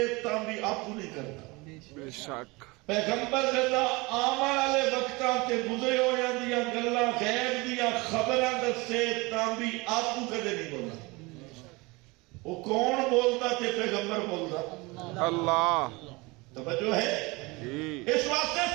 تاں بھی آپ کو نہیں کرتا بے شک پیغمبر جدا آمن والے وقتاں تے گزرے ہو جاندیاں گلاں غیب دیاں خبراں دسے تاں بھی آپ کو کدے نہیں بولنا وہ کون بولتا تے پیغمبر بولتا اللہ توجہ ہے اس واسطے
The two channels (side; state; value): left; quieter; 24.8 dB